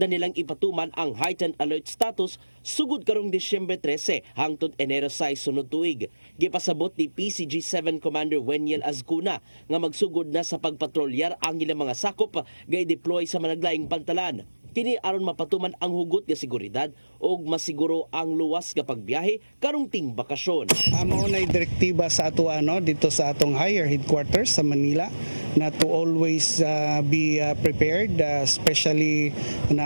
nilang ipatuman ang heightened alert status sugod karong Disyembre 13 hangtod Enero 6 sunod tuig. Gipasabot ni PCG-7 Commander Weniel Azcuna nga magsugod na sa pagpatrolyar ang ilang mga sakop gay-deploy sa managlaing pantalan. Kini aron mapatuman ang hugot nga seguridad ug masiguro ang luwas nga pagbiyahe karong ting bakasyon. Mao nay direktiba sa ato dito sa atong higher headquarters sa Manila na to always be prepared, especially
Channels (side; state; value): both; inverted; correlation -1.00